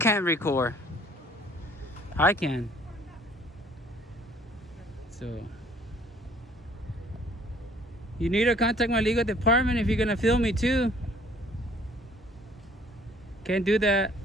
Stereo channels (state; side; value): normal; both; correlation 0.57